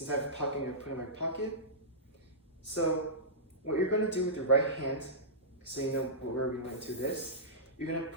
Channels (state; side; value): normal; both; correlation -0.17